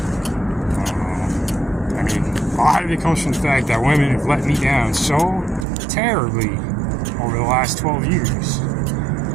I mean, a lot of it comes from the fact that women have let me down so terribly over the last 12 years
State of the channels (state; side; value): drops out; left; at 5.7 s